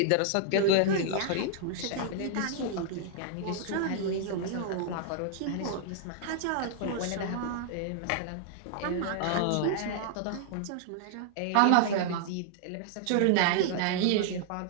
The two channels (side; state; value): both; different; correlation -0.01